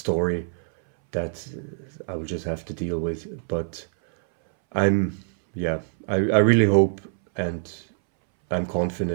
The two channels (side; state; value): left; silent; 62 dB below the other